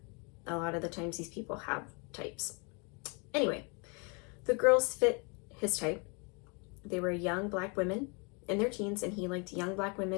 A lot of the times these people have types. Anyway, the girls fit his type. They were young black women in their teens, and he liked young black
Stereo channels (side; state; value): right; quieter; 32.9 dB